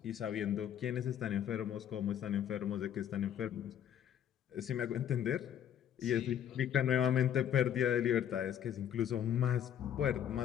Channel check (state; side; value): quieter; right; 9.9 dB